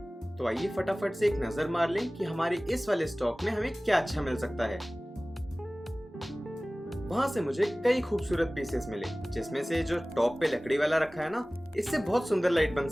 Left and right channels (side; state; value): both; normal; correlation 0.98